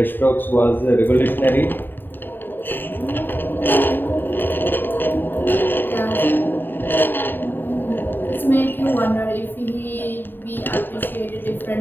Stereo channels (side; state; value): right; late; 0.094 ms